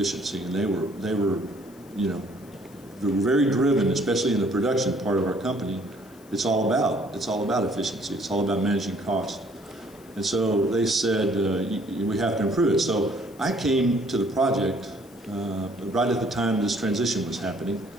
and they were very driven, especially in the production part of our company. It's all about efficiency. It's all about managing cost. And so they said, we have to improve it. So I came to the project right at the time this transition was happening.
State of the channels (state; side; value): noise; left; hiss, 27 dB below the sound